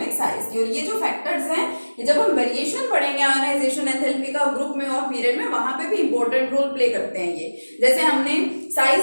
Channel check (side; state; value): both; inverted; correlation -1.00